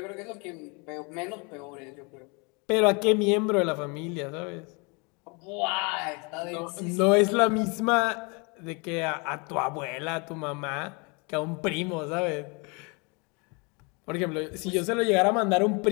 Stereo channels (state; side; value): quieter; right; 31.3 dB